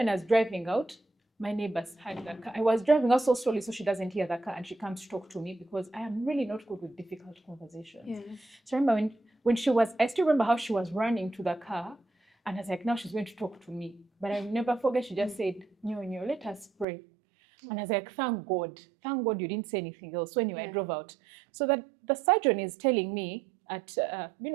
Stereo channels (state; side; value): drops out; left; at 16.9 s